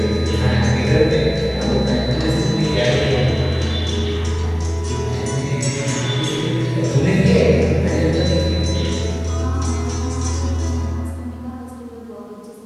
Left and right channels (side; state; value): both; identical; correlation 1.00